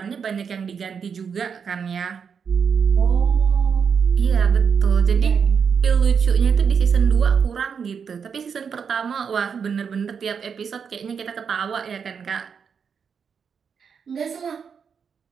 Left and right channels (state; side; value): quieter; left; 6.5 dB